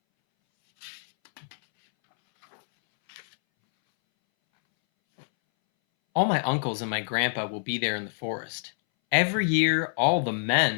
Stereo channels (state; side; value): silent; right; 61 dB below the other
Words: All my uncles and my grandpa will be there in the forest. Every year, all the